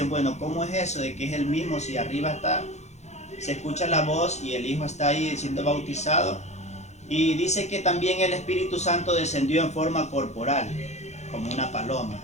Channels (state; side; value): late; right; 0.33 ms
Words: bueno, ¿cómo es eso de que es el mismo si arriba está? Se escucha la voz y el Hijo está ahí siendo bautizado. Y dice que también el Espíritu Santo descendió en forma corporal, como una paloma.